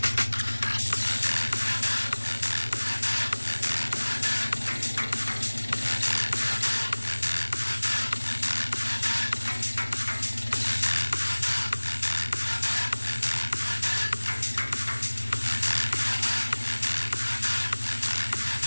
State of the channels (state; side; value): inverted; both; correlation -1.00